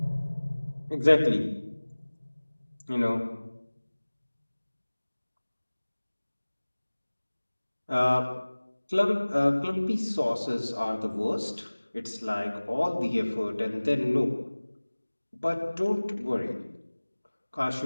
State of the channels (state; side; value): inverted; both; correlation -1.00